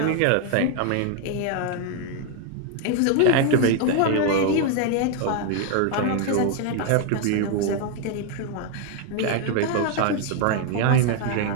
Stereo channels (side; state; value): both; different; correlation 0.01